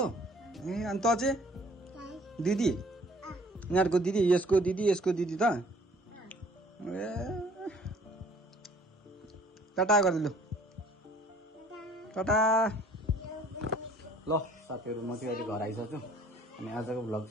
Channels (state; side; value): normal; both; correlation 0.55